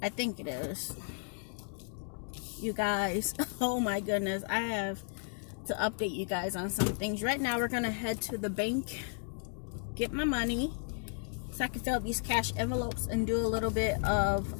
I think it is. You guys, oh my goodness. I have to update you guys on some things. Right now, we're going to head to the bank, get my money, so I can fill up these cash envelopes and do a little bit of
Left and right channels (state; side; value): silent; right; 55 dB below the other